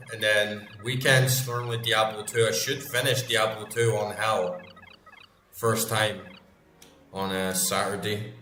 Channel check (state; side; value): identical; both; correlation 1.00